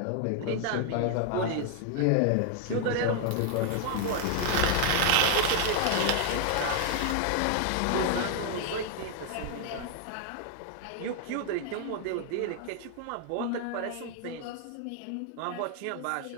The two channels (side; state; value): both; different; correlation 0.00